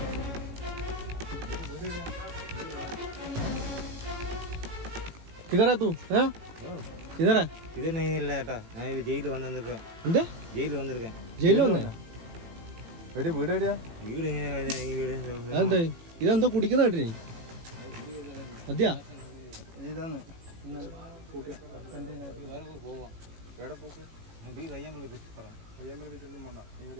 കിതറാ തൂ? കിതറാ? ഇത് ഇല്ല ഏട്ടാ, ഞാൻ ജയിലിൽ വന്നിരിക്കேன். എന്താ ജയിലിൽ വന്നിരിക്കேன். ജയിലിൽ വന്നേ? വീട് എവിടെയാ? വീട് അതെന്താ? ഇതെന്തോ കുടിക്കുന്ന കേട്ടിനി? മതിയാ? ഇതാണ്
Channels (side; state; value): left; late; 18 ms